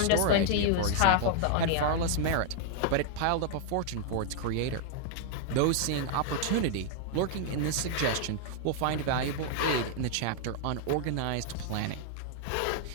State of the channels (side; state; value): both; different; correlation 0.00